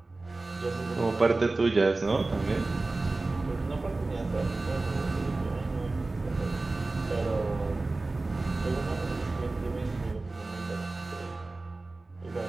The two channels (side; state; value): left; quieter; 3.2 dB